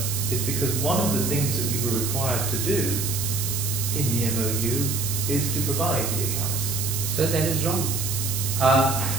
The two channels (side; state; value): right; noise; hiss, 3 dB below the sound